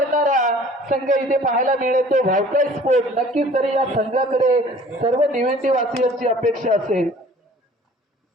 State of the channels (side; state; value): both; normal; correlation 0.50